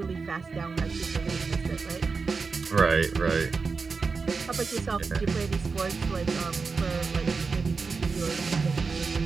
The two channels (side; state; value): left; quieter; 4.7 dB